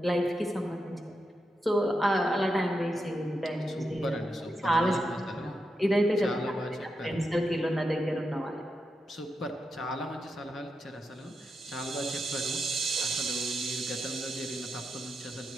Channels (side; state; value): both; normal; correlation 0.86